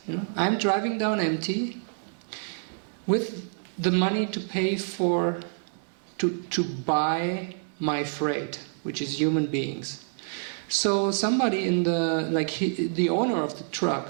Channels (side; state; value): left; silent; digital silence